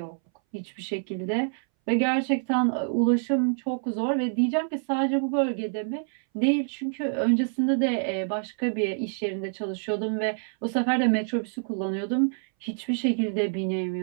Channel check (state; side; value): silent; left; 60 dB below the other